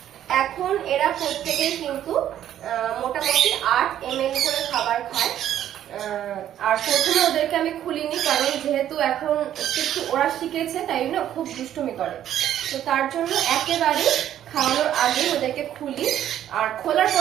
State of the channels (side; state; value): left; quieter; 11.2 dB